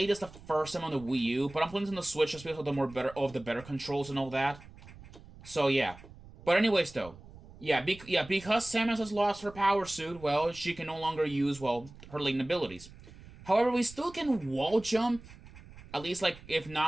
this the first time on the Wii U, but I'm playing this on the Switch just because of the better controls and all that. So yeah. But anyways, though, because Samus has lost her power suit, well, she can no longer use, well, her latent abilities. However, we still can wall jump, at least, like, if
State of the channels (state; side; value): noise; right; rumble, 19 dB below the sound